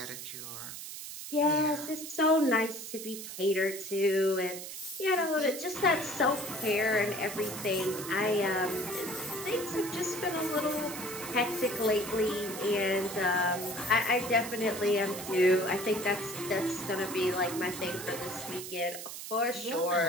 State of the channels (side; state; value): right; noise; hiss, 9 dB below the sound